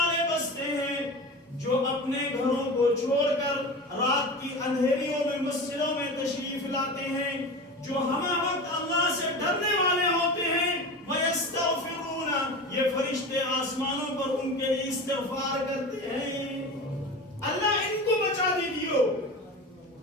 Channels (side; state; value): both; normal; correlation 0.30